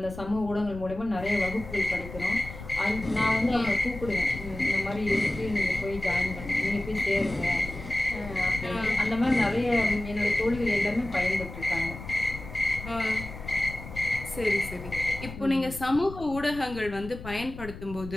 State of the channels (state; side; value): noise; left; rumble, 12 dB below the sound